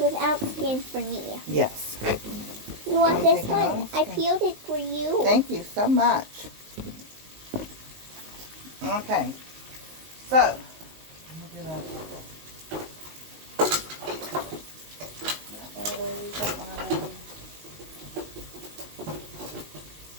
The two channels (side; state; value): left; late; 19 ms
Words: skin for me. Yes. You want this one? I peeled it for you. Thank you so much. Okay. So, Look at that. One of those, one of those.